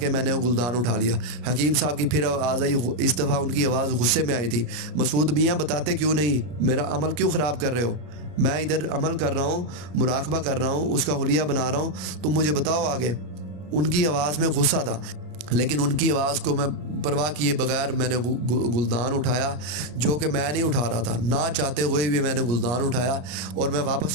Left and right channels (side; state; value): left; late; 33 ms